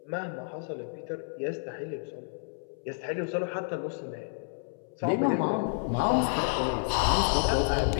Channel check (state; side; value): silent; right; 58 dB below the other